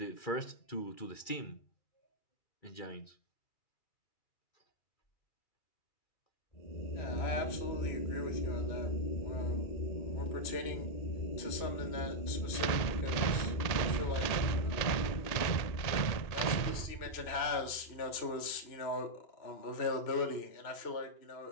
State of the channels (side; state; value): right; late; 1.8 ms